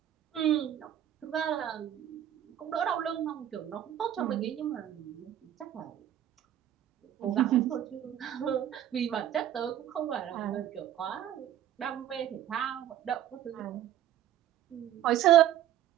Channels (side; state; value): left; quieter; 11.6 dB